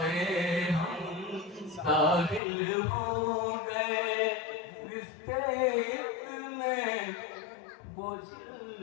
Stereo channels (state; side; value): drops out; right; at 2.4 s